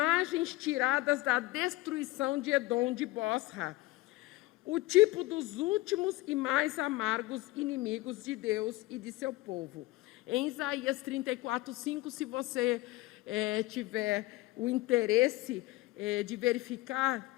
tiradas da destruição de Edom, de Bosra, o tipo dos últimos e mais amargos inimigos de Deus e de seu povo. Em Isaías 34:5, se você tiver o interesse de verificar,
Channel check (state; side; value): quieter; right; 19.4 dB